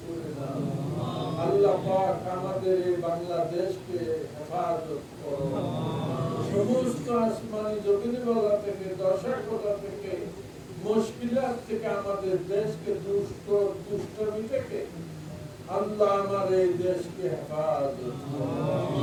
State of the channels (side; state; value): both; identical; correlation 1.00